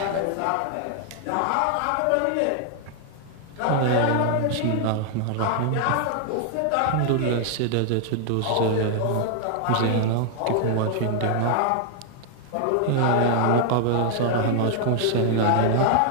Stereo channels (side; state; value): both; different; correlation 0.00